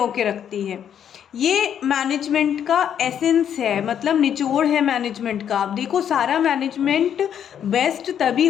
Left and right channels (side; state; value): right; quieter; 9.1 dB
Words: के रखती है। ये मैनेजमेंट का एसेंस है, मतलब निचोड़ है मैनेजमेंट का। अब देखो, सारा मैनेजमेंट बेस्ट तभी